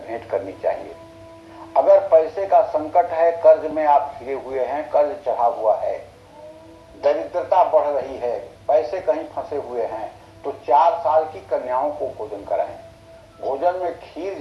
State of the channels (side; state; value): both; identical; correlation 1.00